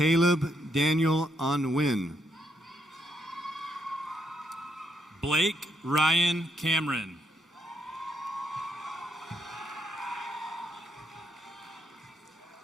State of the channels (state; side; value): normal; both; correlation 0.76